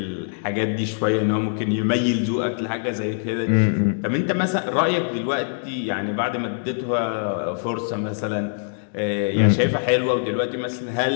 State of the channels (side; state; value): right; silent; digital silence